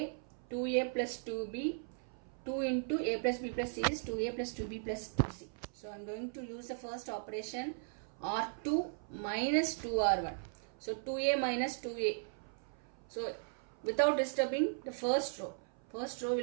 2a plus 2b, 2 into a plus b plus c is 2a plus 2b plus 2c. So I am going to use the first operation R2 minus 2R1. So 2a minus 2a. So without disturbing the first row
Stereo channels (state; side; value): silent; left; 53 dB below the other